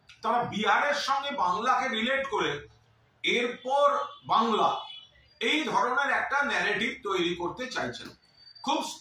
তারা বিহারের সঙ্গে বাংলাকে রিলেট করে এরপর বাংলা এই ধরনের একটা ন্যারেটিভ তৈরি করতে চাইছেন। খুব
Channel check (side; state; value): both; identical; correlation 1.00